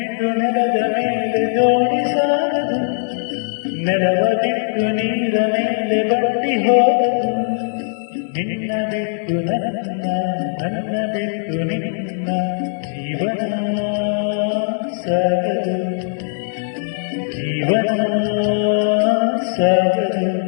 ನೆಲದ ಮೇಲೆ ದೋಣಿ ಸಾಗದು, ನೆಲವ ಬಿಟ್ಟು ನೀರ ಮೇಲೆ ಬಟ್ಟಿ ಹೋಗದು. ನಿನ್ನ ಬಿಟ್ಟು ನನ್ನ, ನನ್ನ ಬಿಟ್ಟು ನಿನ್ನ ಜೀವನ ಸಾಗದು, ಜೀವನ ಸಾಗದು.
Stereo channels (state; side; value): silent; right; 64 dB below the other